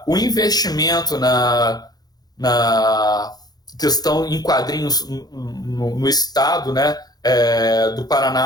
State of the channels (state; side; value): late; right; 0.19 ms